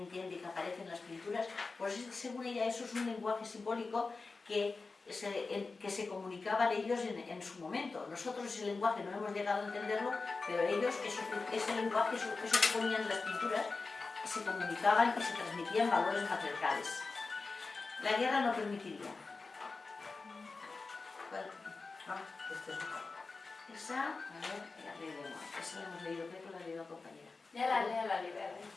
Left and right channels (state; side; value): quieter; right; 4.0 dB